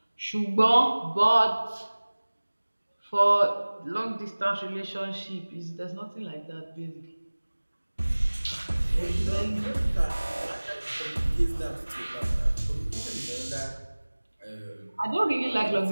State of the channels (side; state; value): both; inverted; correlation -1.00